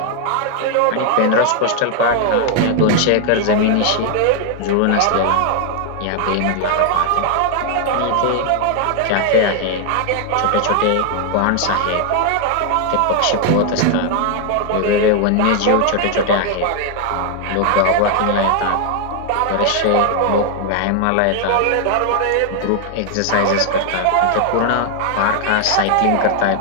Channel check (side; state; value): both; different; correlation 0.00